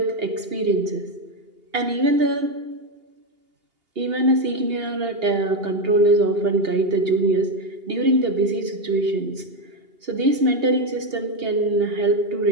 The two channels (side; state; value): left; late; 2.8 ms